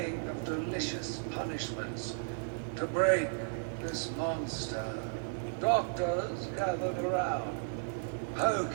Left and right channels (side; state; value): left; silent; digital silence